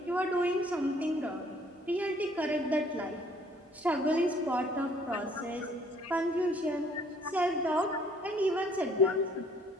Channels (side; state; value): both; normal; correlation 0.60